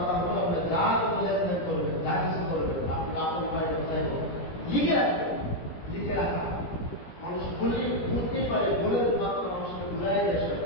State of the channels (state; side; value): late; right; 17 ms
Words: হলো, আপনি যা কোনো লেনদেন করবেন, যা কিছু করবেন, আপনি আপনার উপায় ব্যবসায় করবেন, লিখে রাখবেন। লিখে রাখা মানুষ বুঝতেই পারে, বলে মাত্র মানুষকে ভুলাই দেয়।